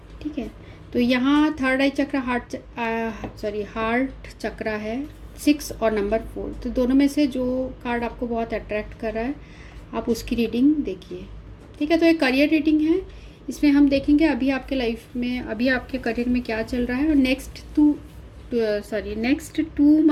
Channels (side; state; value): both; identical; correlation 1.00